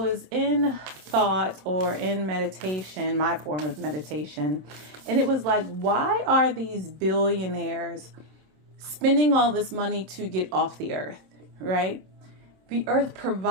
in thought or in meditation, my form of meditation, and it was like, why are these billionaires spending all this money to get off the earth, right? The earth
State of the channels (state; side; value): late; left; 27 ms